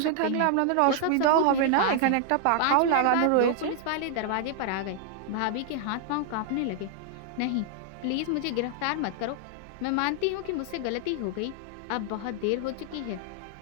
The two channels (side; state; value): both; different; correlation 0.00